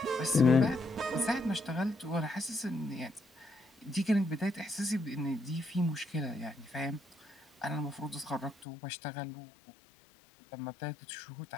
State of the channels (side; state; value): right; drops out; at 8.7 s